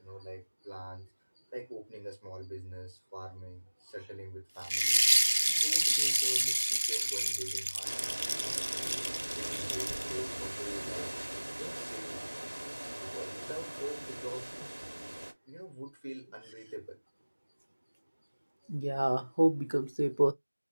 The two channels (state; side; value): inverted; both; correlation -1.00